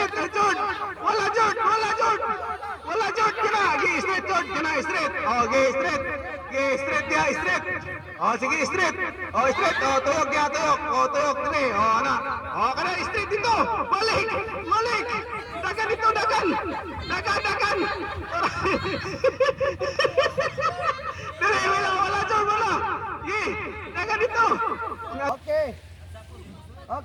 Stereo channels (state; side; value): identical; both; correlation 1.00